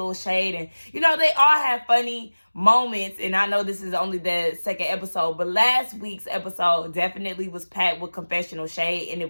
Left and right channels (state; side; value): inverted; both; correlation -1.00